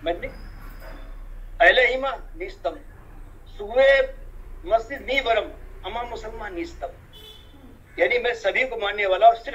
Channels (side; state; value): both; identical; correlation 1.00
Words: मैंने अहले इमा नीस्तम, सुवे मस्जिद नी वरम, अमा मुसलमान नीस्तम। यानी मैं सभी को मानने वाला और